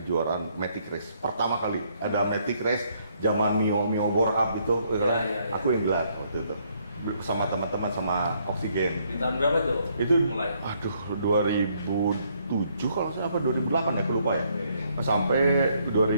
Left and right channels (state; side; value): inverted; both; correlation -0.70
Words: Matic Race. Pertama kali ada Matic Race zaman Mio Borhab itu, aku yang gelar waktu itu sama teman-teman sama Oksigen. Di tahun berapa tuh? Itu mulai. 2007 kalau saya apa 2008 ya, aku lupa ya. Sampai